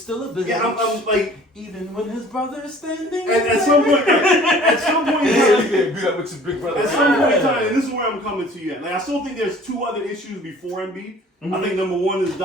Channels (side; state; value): both; normal; correlation 0.50